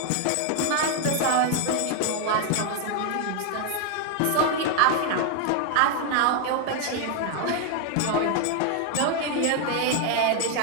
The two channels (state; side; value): different; both; correlation 0.01